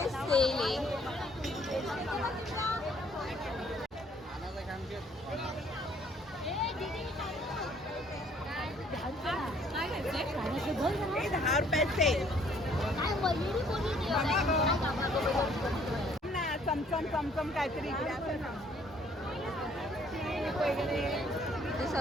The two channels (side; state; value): both; normal; correlation 0.61